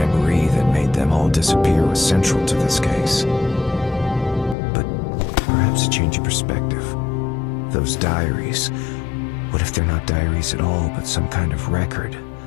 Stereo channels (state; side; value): drops out; right; at 4.5 s